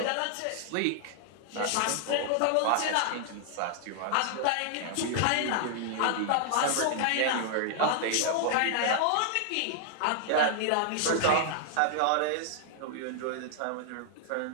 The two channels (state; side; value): different; both; correlation -0.01